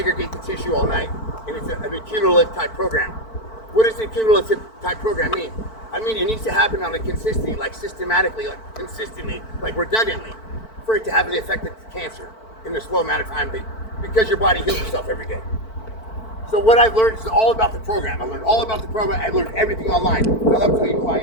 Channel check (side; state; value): right; late; 4.5 ms